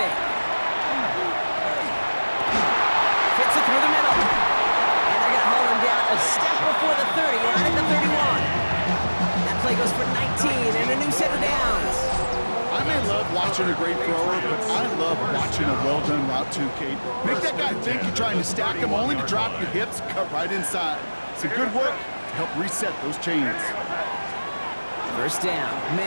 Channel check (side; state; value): both; inverted; correlation -1.00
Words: Fits it through the middle. And they're going to haul him down a step before the 30, right at the 31. That play goes for 19 and a new set of downs. I may love watching a great thrower, but I love watching a well-done route too, Kate. Make that guy think you're trying to stack him only to drop your hips, cut right inside. Some good work to help reset those chains. First down,